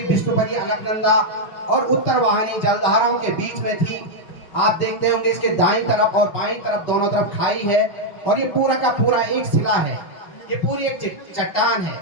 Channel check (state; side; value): late; right; 5.4 ms